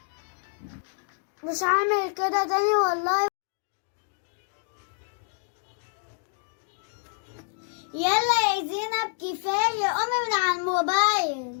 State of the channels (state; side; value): silent; right; digital silence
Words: مش هعمل كده تاني والله. يلا يا زينب كفاية، قومي من على